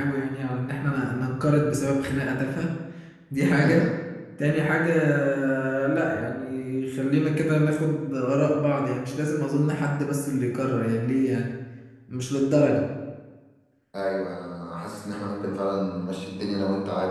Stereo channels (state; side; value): identical; both; correlation 1.00